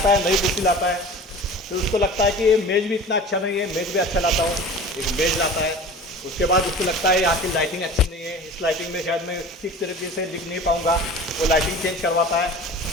है, नई कुर्सी लाता है। फिर उसको लगता है कि ये मेज़ भी इतना अच्छा नहीं है, मेज़ भी अच्छा लाता हूँ, एक मेज़ लाता है। उसके बाद उसको लगता है यहाँ की लाइटिंग अच्छी नहीं है, इस लाइटिंग में शायद मैं ठीक तरीके से लिख नहीं पाऊँगा, वो लाइटिंग चेंज करवाता है।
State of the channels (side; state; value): both; normal; correlation 0.39